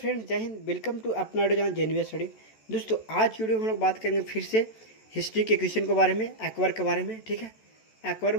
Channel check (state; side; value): late; right; 14 ms